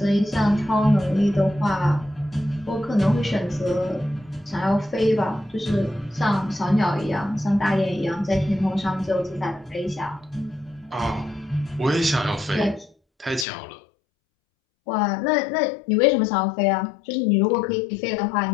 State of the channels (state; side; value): drops out; right; at 13.5 s